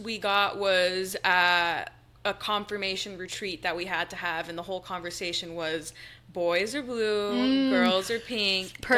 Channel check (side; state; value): both; identical; correlation 1.00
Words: got was at a confirmation retreat that we had to have, and the whole conversation was boys are blue, girls are pink,